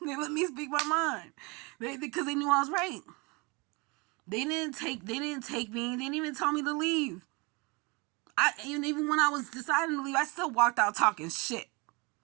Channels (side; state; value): left; quieter; 28.0 dB